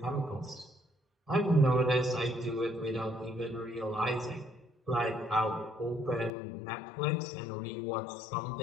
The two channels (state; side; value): drops out; right; at 6.3 s